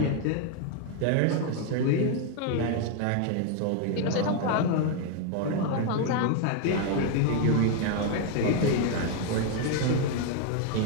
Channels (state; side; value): different; both; correlation 0.01